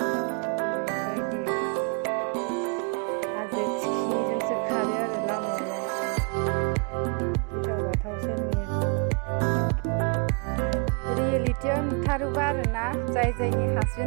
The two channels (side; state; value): left; quieter; 35.4 dB